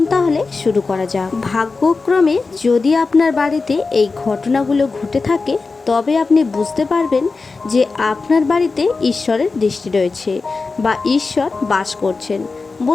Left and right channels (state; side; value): quieter; right; 4.1 dB